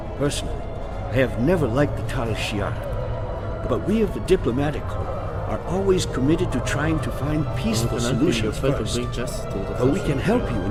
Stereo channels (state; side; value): identical; both; correlation 1.00